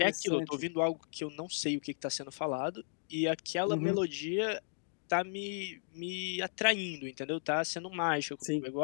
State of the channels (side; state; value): right; silent; digital silence